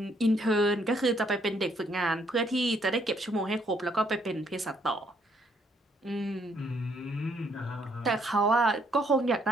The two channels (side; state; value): both; normal; correlation 0.69